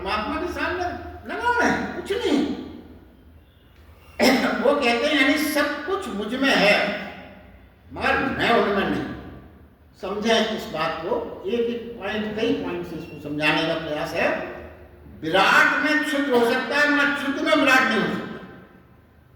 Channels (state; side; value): identical; both; correlation 1.00